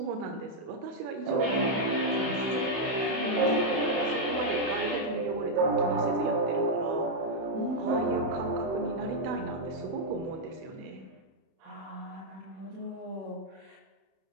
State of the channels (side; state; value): left; late; 31 ms